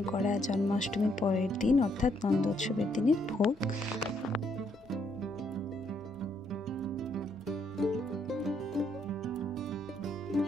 করা জন্মাষ্টমীর পরের দিন অর্থাৎ নন্দোৎসবের দিনের ভোগ।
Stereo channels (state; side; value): normal; both; correlation 0.72